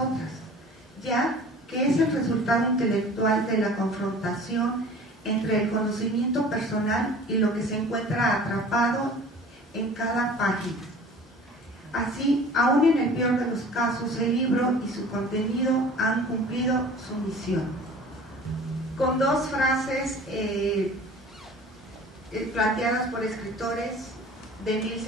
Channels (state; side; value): normal; both; correlation 0.44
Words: ya que es el resultado intelectual de la confrontación entre el conocimiento personal y lo que se encuentra atrapado en cada página. Así, aún en el peor de los casos, el libro y su contenido han cumplido su misión. Con dos frases planteadas por escritores de